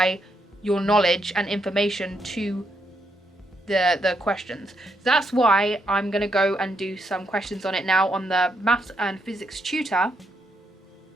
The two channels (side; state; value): both; normal; correlation 0.78